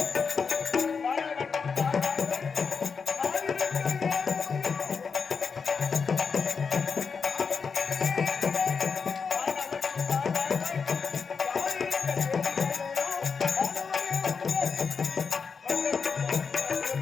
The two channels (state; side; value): quieter; right; 5.5 dB